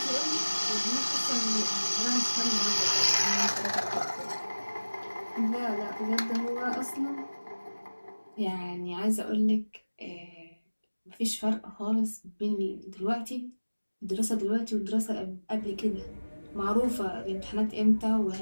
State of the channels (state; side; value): inverted; both; correlation -1.00